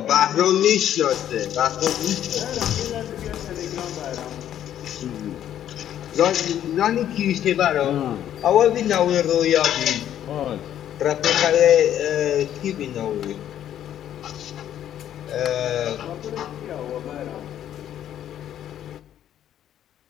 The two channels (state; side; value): quieter; right; 10.9 dB